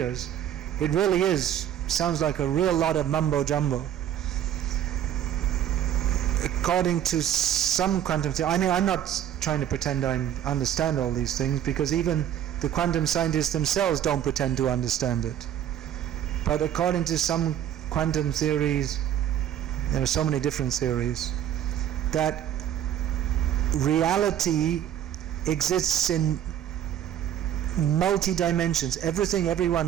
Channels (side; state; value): left; quieter; 10.5 dB